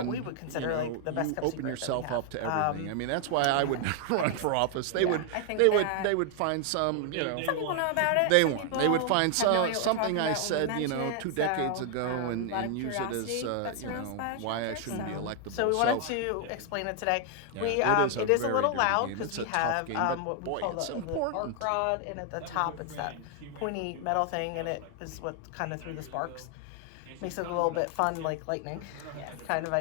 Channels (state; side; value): different; both; correlation 0.00